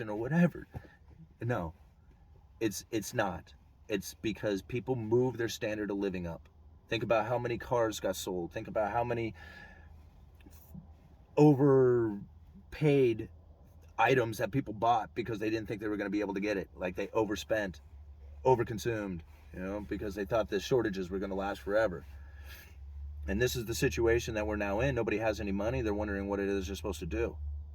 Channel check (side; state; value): both; identical; correlation 1.00